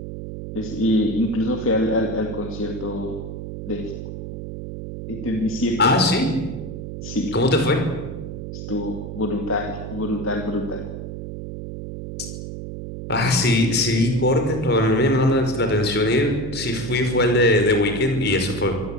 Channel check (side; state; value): right; noise; hum, 8 dB below the sound